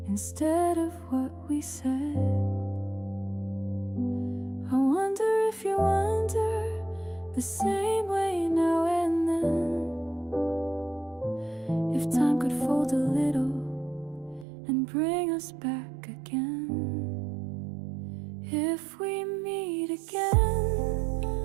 instead of what we said. I wonder if you wonder the same way now and then. If time could fold a little and bring us back again. If we meet again,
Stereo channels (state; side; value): drops out; left; at 14.5 s